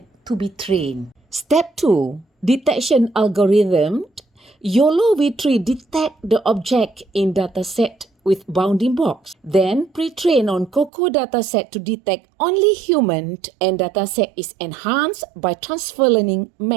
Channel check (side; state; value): left; drops out; at 10.9 s